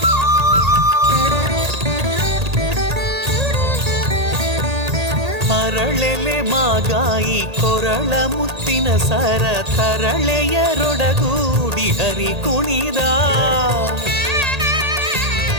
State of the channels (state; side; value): late; left; 1.8 ms